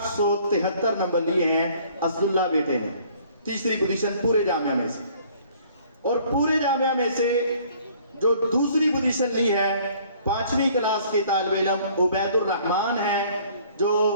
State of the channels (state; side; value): inverted; both; correlation -0.57